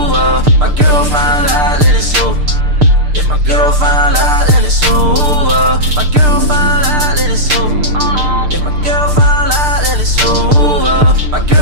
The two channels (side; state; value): left; late; 6.7 ms